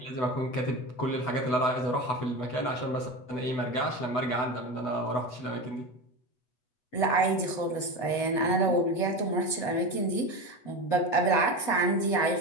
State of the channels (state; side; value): late; right; 8.1 ms